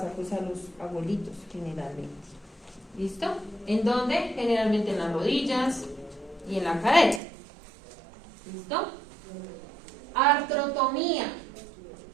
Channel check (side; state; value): left; drops out; at 7.2 s